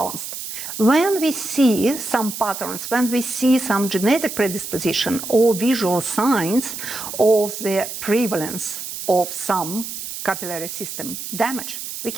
When we see some patterns, when we see some genetic predisposition or visual signs of the prevalence of some capillary system damage, we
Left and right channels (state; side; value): noise; right; hiss, 8 dB below the sound